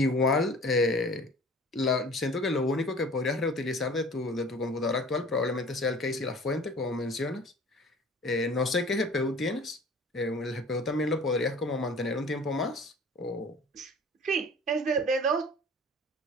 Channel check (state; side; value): normal; both; correlation 0.45